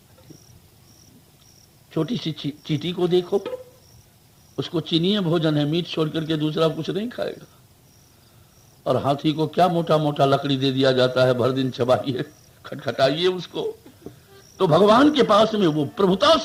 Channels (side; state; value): both; identical; correlation 1.00